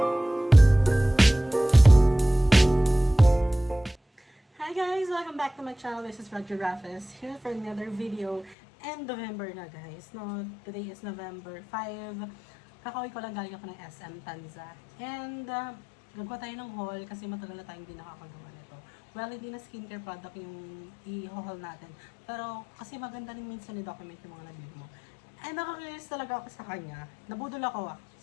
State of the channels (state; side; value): drops out; right; at 8.6 s